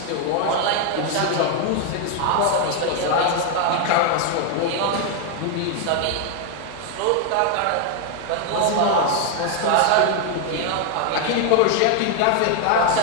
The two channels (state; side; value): different; both; correlation 0.01